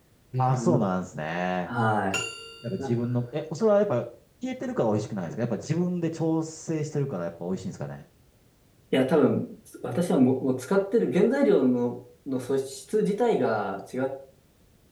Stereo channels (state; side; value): identical; both; correlation 1.00